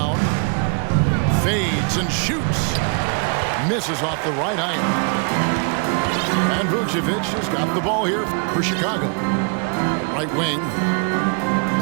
Fades and shoots. Misses off the right iron. And Vucevic has got the ball here for Chicago. Right wing.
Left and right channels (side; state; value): left; quieter; 38.5 dB